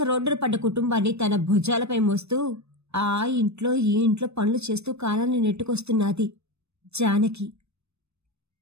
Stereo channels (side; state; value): left; late; 0.80 ms